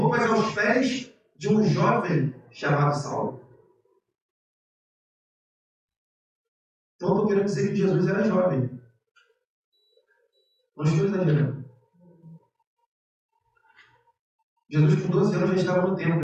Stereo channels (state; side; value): identical; both; correlation 1.00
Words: aos pés de um jovem chamado Saulo. Então estou querendo dizer que Jesus era jovem. Não estou exagerando. Jesus com 12 anos já estava no